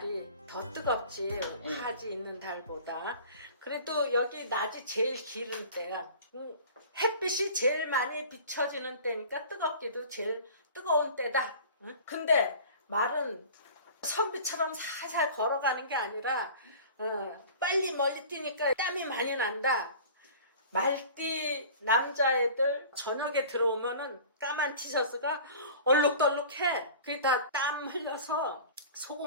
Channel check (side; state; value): both; inverted; correlation -0.42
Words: 더 뜨겁지 하지 있는 달보다. 그래도 여기 낮이 제일 길은 때야. 햇빛이 제일 많이 비춰지는 때니까 뜨겁기도 제일 뜨거운 때다. 근데 말은 선비처럼 살살 걸어가는 게 아니라 빨리 멀리 뛰니까 땀이 많이 난다. 말띠 남자애들 저녁에 들어오면은 까만 티셔츠가 얼룩덜룩해. 그게 다 땀 흘려서